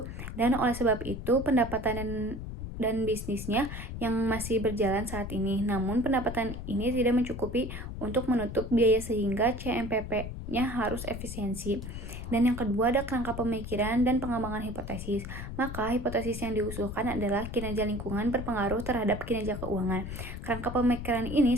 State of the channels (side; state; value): left; noise; rumble, 8 dB below the sound